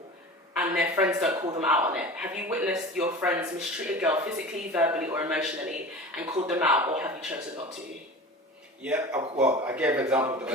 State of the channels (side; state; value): both; normal; correlation 0.35